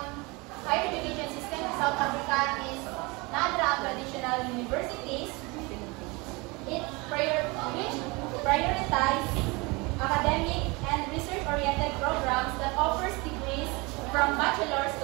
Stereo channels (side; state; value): left; quieter; 26.1 dB